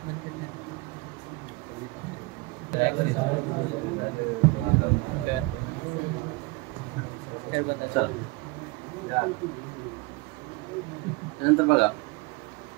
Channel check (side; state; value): left; quieter; 23.6 dB